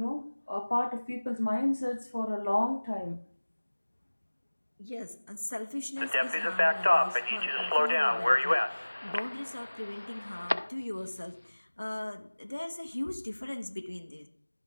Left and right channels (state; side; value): inverted; both; correlation -1.00